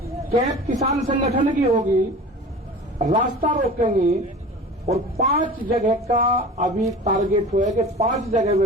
कैब किसान संगठन की होगी, रास्ता रोकेंगे और 5 जगह का अभी टारगेट हुआ है कि 5 जगह में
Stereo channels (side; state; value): both; normal; correlation 0.38